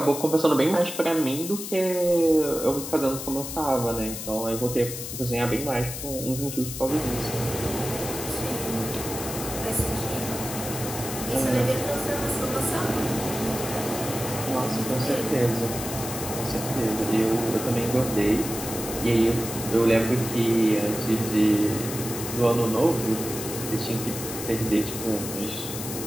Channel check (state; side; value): noise; left; hiss, 7 dB below the sound